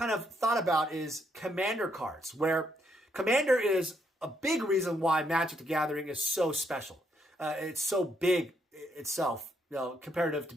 of thought about is Commander cards, where Commander is a big reason why Magic the Gathering is so special. It's so big itself, comparative to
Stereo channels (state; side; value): normal; both; correlation 0.74